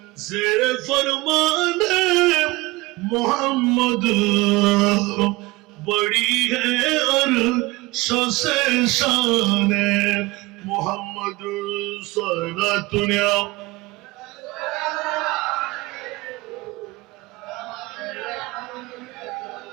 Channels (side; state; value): left; quieter; 21.8 dB